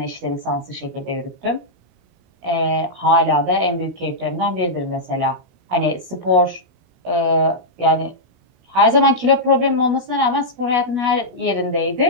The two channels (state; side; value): late; left; 16 ms